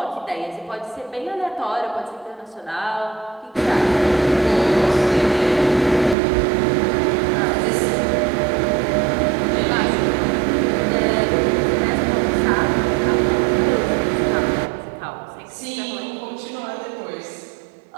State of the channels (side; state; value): left; drops out; at 6.2 s